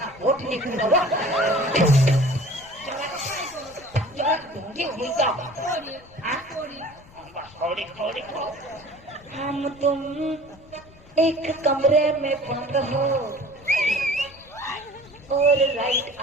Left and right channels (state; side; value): noise; left; rumble, 24 dB below the sound